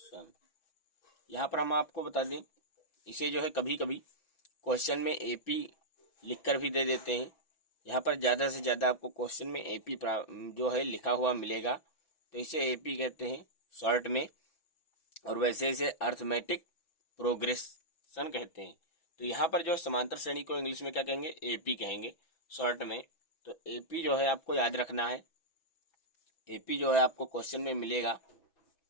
यहाँ पर हम आपको बता दें, इसे जो है कभी कभी क्वेश्चन में एपी लिखकर भी दे देते हैं। यहाँ पर ज़्यादा से ज़्यादा आपको क्वेश्चन में एपी जो है लिखा हुआ मिलेगा, तो इसे एपी कहते हैं शॉर्ट में। और वैसे इसे अर्थमेटिक प्रोग्रेशन कहते हैं। तो यहाँ पर जो समांतर श्रेणी को इंग्लिश में क्या कहेंगे, एपी कहेंगे शॉर्ट में। तो एपी जो है आपको याद रखना है। एपी जो है आपको क्वेश्चन में मिलेगा,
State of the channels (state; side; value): late; right; 6.2 ms